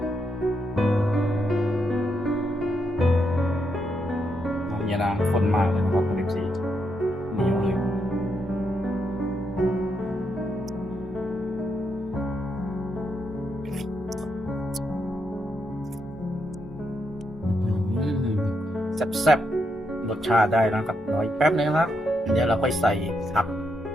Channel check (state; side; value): normal; both; correlation 0.80